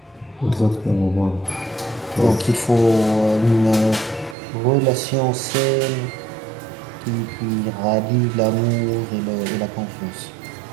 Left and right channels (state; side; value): drops out; left; at 4.4 s